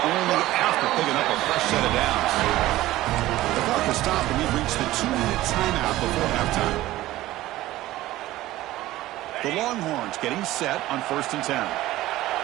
only after picking up a fresh set of downs. The clock has stopped, and we've reached the 2-minute timeout before halftime. The Longhorns getting set on 1st and 10.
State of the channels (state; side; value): quieter; left; 16.2 dB